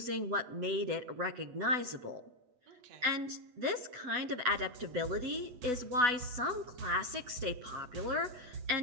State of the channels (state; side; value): late; left; 8.1 ms